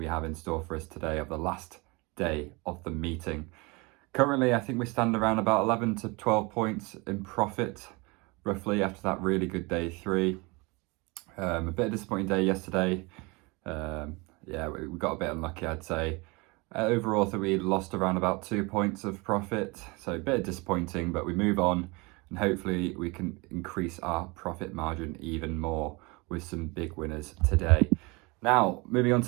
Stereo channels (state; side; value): quieter; left; 26.5 dB